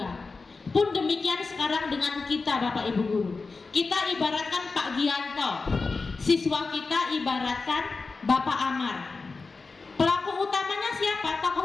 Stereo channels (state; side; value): quieter; right; 4.2 dB